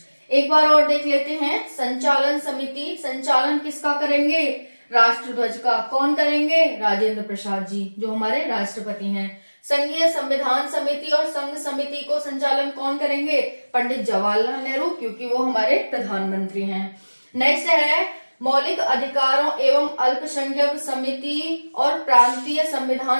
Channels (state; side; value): inverted; both; correlation -1.00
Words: एक बार और देख लेते हैं। संचालन समिति, संचालन किसका करेंगे? राष्ट्र ध्वज का। कौन करेंगे? राजेंद्र प्रसाद जी, जो हमारे राष्ट्रपति हैं। संघीय संविधान समिति और संघ समिति को संचालन कौन करेंगे? पंडित जवाहरलाल नेहरू, क्योंकि वो हमारे प्रधानमंत्री हैं। नेक्स्ट है मौलिक अधिकारों एवं अल्पसंख्यक समिति और प्रांतीय